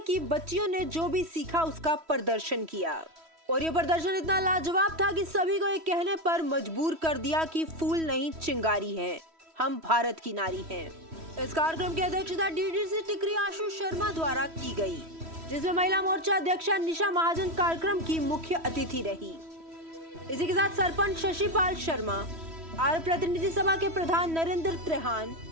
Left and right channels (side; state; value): left; late; 3.1 ms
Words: की बच्चियों ने जो भी सीखा उसका प्रदर्शन किया और ये प्रदर्शन इतना लाजवाब था कि सभी को ये कहने पर मजबूर कर दिया कि फूल नहीं चिंगारी हैं, हम भारत की नारी हैं। इस कार्यक्रम की अध्यक्षता डीडीसी टिकरी आशु शर्मा द्वारा की गई, जिसमें महिला मोर्चा अध्यक्षा निशा महाजन कार्यक्रम की मुख्य अतिथि रही। इसी के साथ सरपंच शशिपाल शर्मा, आर्य प्रतिनिधि सभा के प्रधान नरेंद्र त्रेहान,